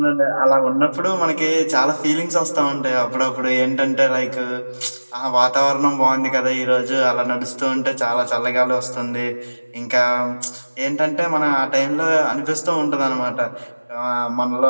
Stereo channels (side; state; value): both; inverted; correlation -1.00